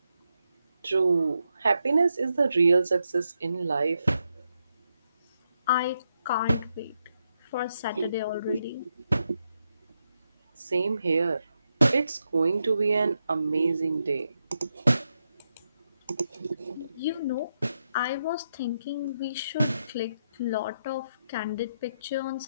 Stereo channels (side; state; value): both; inverted; correlation -0.83